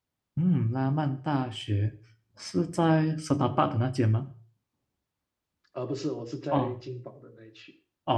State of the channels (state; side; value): identical; both; correlation 1.00